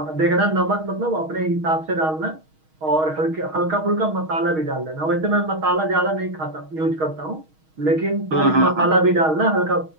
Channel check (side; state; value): left; late; 6.4 ms